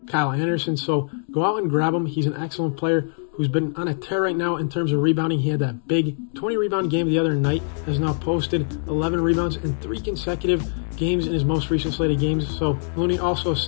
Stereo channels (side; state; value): right; silent; 62 dB below the other